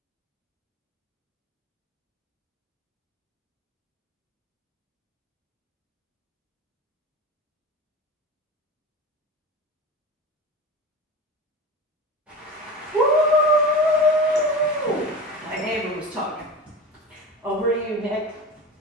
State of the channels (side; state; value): both; normal; correlation 0.31